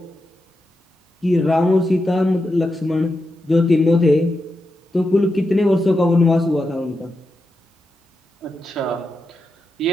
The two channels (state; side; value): normal; both; correlation 0.87